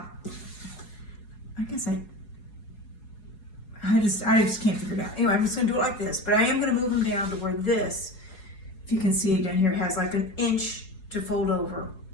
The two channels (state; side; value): late; right; 4.7 ms